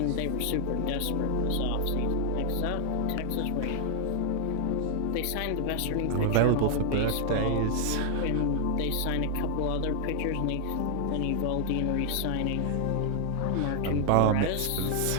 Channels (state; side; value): different; both; correlation 0.00